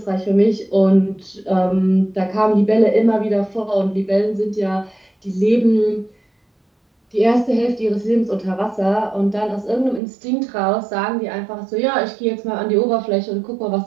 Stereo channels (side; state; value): left; drops out; at 10.0 s